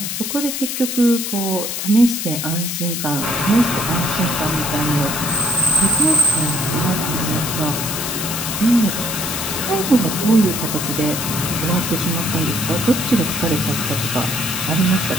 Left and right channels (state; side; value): noise; left; hiss, 3 dB below the sound